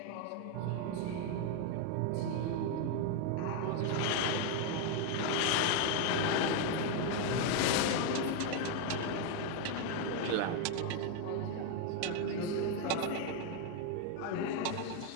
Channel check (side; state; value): both; different; correlation 0.01